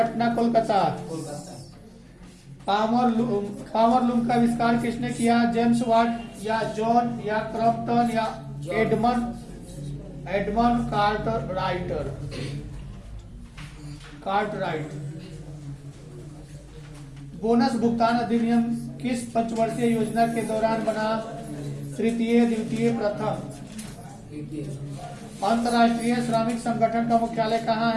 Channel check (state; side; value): identical; both; correlation 1.00